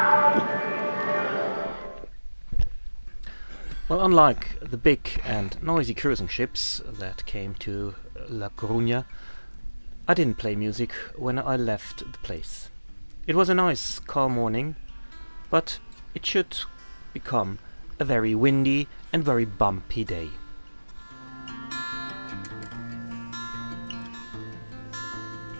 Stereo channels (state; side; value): inverted; both; correlation -1.00